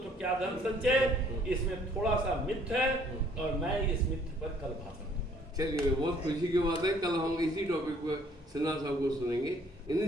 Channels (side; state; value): both; normal; correlation 0.61